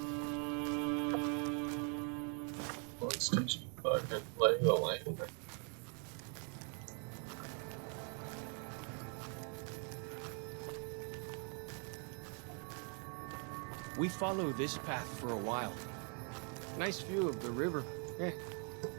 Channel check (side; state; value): left; quieter; 39.5 dB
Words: Let's teach you fucking lay the land. We follow this path for a while. Nice view of the river. Eh.